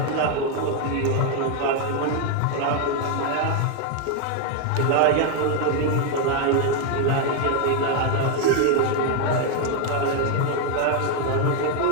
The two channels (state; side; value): different; both; correlation 0.01